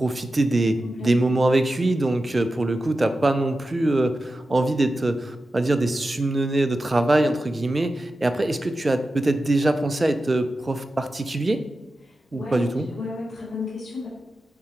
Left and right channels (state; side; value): normal; both; correlation 0.92